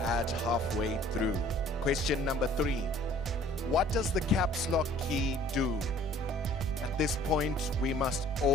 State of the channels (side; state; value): both; normal; correlation 0.54